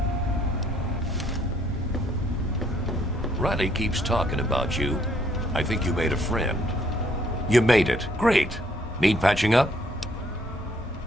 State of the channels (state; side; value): normal; both; correlation 0.66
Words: Riley keeps talking about you. I think you made a friend. You made it. Great. Need patching up?